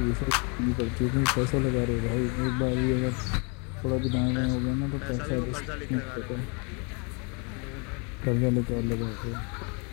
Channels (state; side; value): quieter; right; 33.8 dB